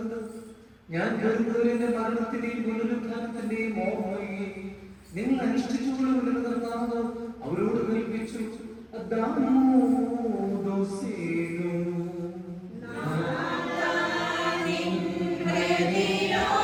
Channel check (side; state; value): both; identical; correlation 1.00